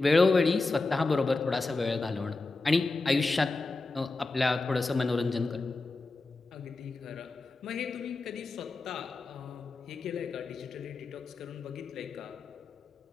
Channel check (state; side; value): quieter; right; 3.5 dB